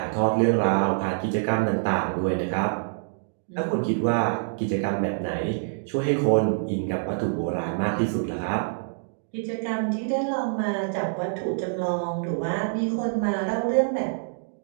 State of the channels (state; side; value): silent; left; digital silence